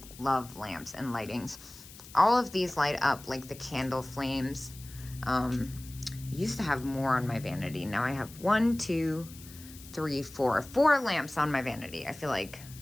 love lamps and lightings. All of these light up like the candle flames. I used to have more on my vanity. Now I have 1, 2, 3, 4 lamps on my vanity. I feel like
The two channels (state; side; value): noise; left; hiss, 18 dB below the sound